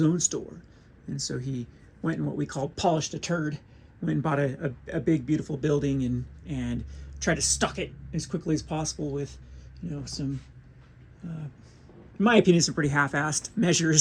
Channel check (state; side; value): identical; both; correlation 1.00